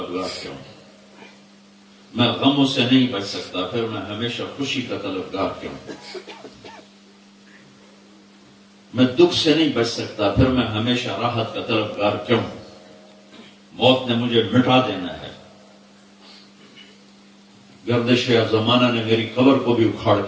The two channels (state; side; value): identical; both; correlation 1.00